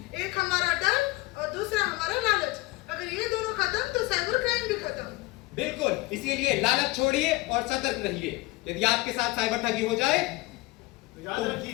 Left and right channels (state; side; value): quieter; right; 20.9 dB